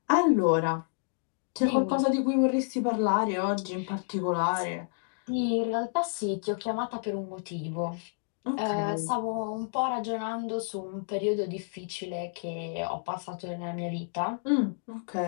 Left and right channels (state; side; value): silent; right; digital silence